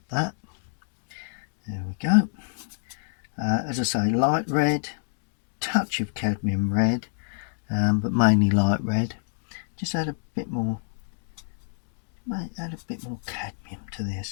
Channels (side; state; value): right; silent; digital silence